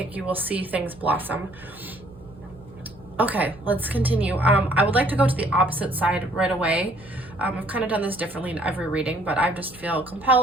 you will see things blossom. Okay, let's continue. I would like to go to the opposite side right away. I've kind of done this differently in every reading, but I just feel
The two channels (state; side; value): noise; right; hum, 22 dB below the sound